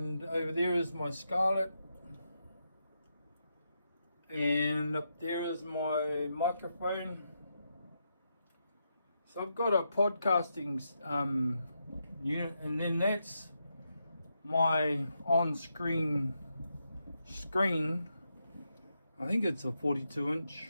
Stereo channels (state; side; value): inverted; both; correlation -0.83